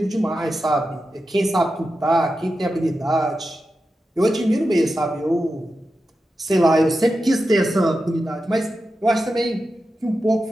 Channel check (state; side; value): normal; both; correlation 0.90